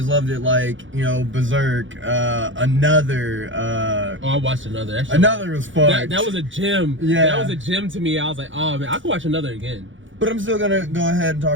loved it, like, you know, Berserk, Another, I watched another. That shit Another was fun. That was a gem. Yeah. That was a gem to me. I was like, oh man, I could watch another again. But I'm still gonna go ahead and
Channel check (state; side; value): late; left; 0.56 ms